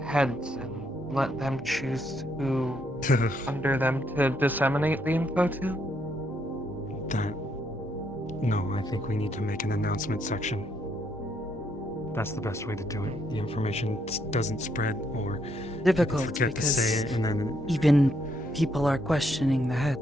heads and let them choose who under them to disseminate the info to? No, I think we need to make an announcement section. That's the best way to do it. The information doesn't spread, or Difficult forget to say it, and then even people are questioning the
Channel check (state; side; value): normal; both; correlation 0.74